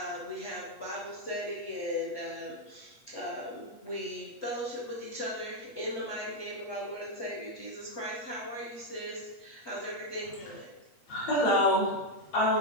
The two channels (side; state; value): right; late; 8.2 ms